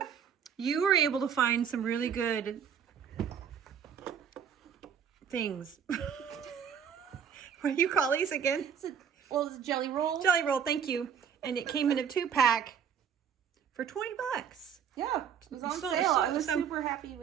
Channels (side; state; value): left; quieter; 7.8 dB